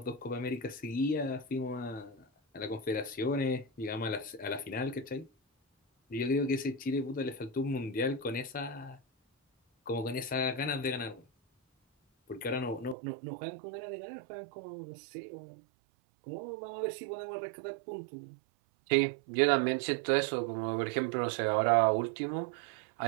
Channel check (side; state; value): left; drops out; at 13.0 s